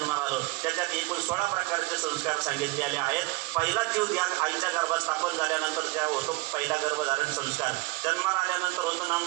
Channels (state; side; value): quieter; left; 23.7 dB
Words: आलो त्याच्यात एकूण 16 प्रकारचे संस्कार सांगितलेले आहेत. पहिला जीव त्या आईच्या गर्भात स्थापन झाल्यानंतर त्या होतो पहिला गर्भधारण संस्कार. जन्माला आल्यानंतर होतो